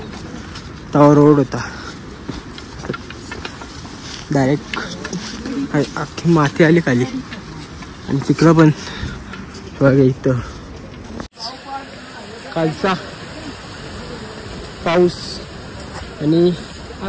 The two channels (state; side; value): identical; both; correlation 1.00